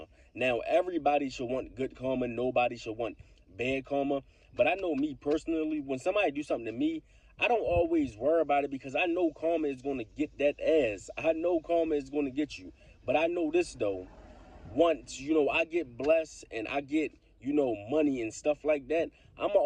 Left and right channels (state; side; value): identical; both; correlation 1.00